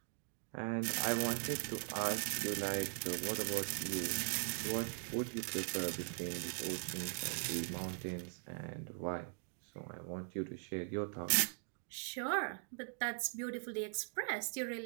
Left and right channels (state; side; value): silent; left; 51 dB below the other